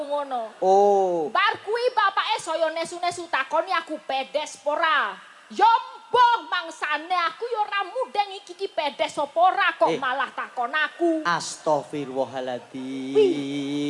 ngono. Oh. Bar kuwi bapake saya nesu-nesu takoni aku pedes pora. Yo mbah mangsane aku yo ora mudeng iki pedes apa ora kok malah takon aku.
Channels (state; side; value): identical; both; correlation 1.00